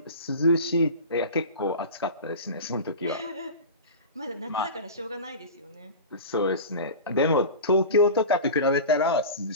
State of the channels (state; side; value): inverted; both; correlation -0.31